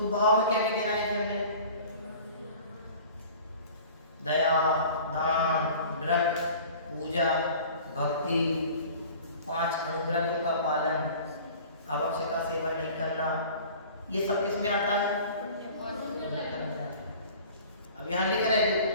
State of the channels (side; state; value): both; inverted; correlation -0.44